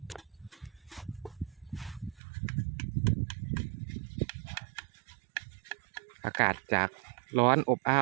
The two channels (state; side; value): drops out; left; at 2.2 s